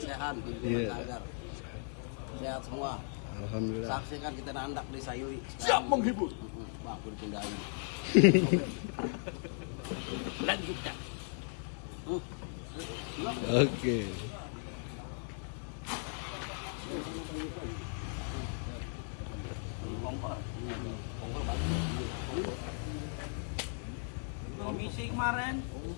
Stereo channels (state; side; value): silent; right; 53 dB below the other